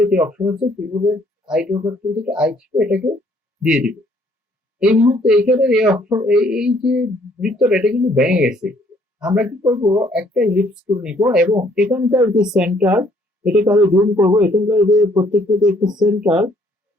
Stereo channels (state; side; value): normal; both; correlation 0.64